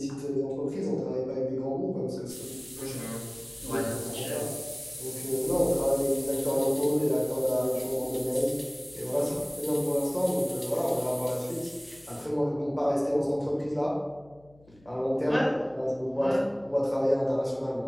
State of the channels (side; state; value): left; noise; hum, 28 dB below the sound